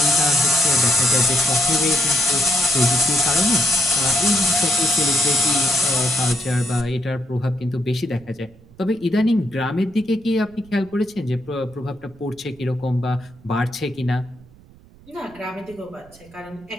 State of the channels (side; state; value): right; noise; rumble, 25 dB below the sound